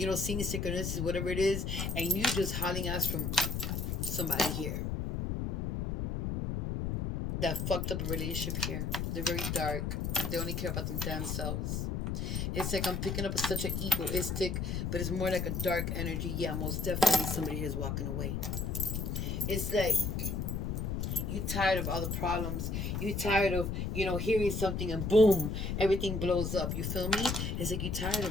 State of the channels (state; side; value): noise; left; rumble, 1 dB below the sound